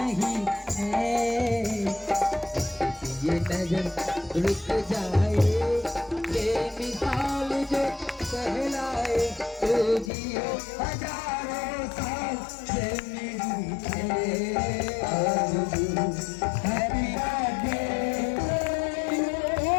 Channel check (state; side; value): drops out; right; at 10.1 s